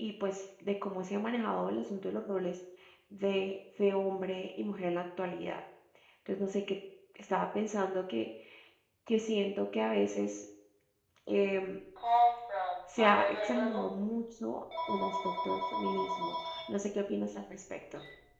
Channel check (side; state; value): both; identical; correlation 1.00